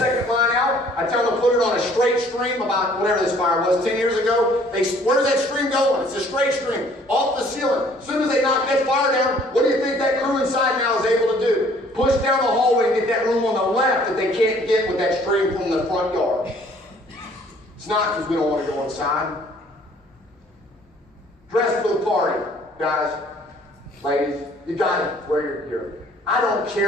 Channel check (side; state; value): both; normal; correlation 0.58